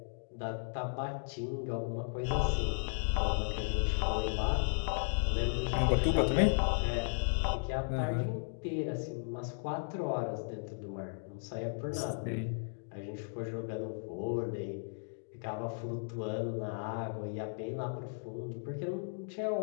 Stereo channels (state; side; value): silent; right; digital silence